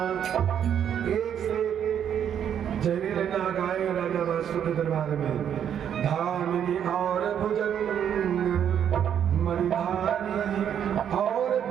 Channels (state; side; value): quieter; left; 9.0 dB